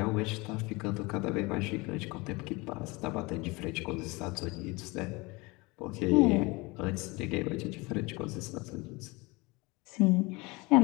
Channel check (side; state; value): right; quieter; 24.8 dB